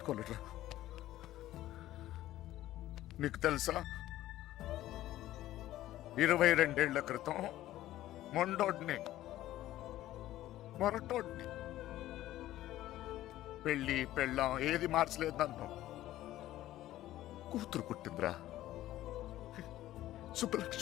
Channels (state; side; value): quieter; right; 14.5 dB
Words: నీకు తెలుసా, 22 ఏళ్ల క్రితం మొండోడ్ని మొరటోడ్ని పెళ్ళి పెళ్ళాం ఏది మార్చలేదు నన్ను. కూతురు పుట్టిందిరా,